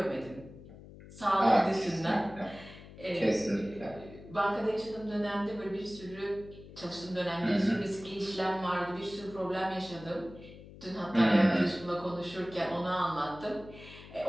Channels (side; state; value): left; noise; hum, 17 dB below the sound